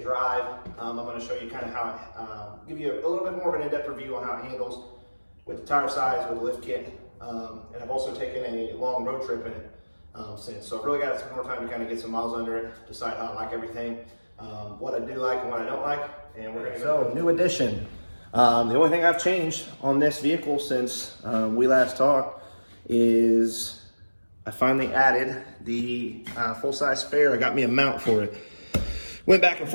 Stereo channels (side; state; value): both; inverted; correlation -1.00